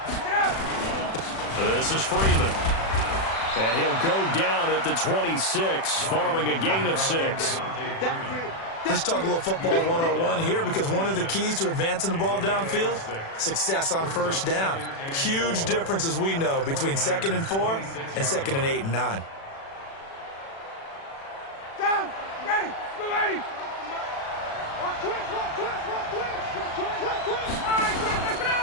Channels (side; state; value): right; late; 36 ms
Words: Get up. This is Freeman. And he'll go down at the 26, following a gain of 6. Let's talk a little football 101 here, because one of the keys to advancing the ball downfield, success on 1st down. Huge difference, as we know, between 2nd and 4 and 2nd and 8 and 9. Down. Ready. Go, ready.